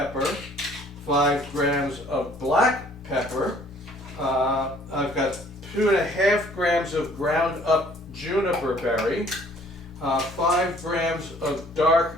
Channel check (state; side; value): normal; both; correlation 0.57